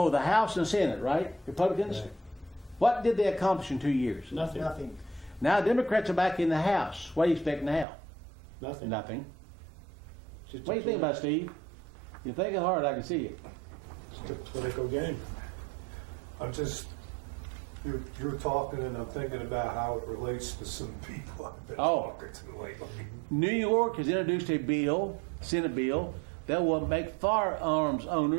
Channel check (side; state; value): left; drops out; at 7.9 s